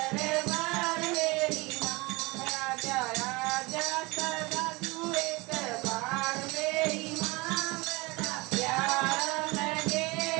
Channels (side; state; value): left; quieter; 24.4 dB